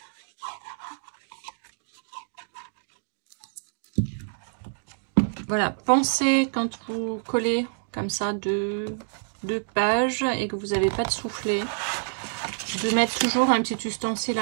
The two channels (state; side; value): silent; left; digital silence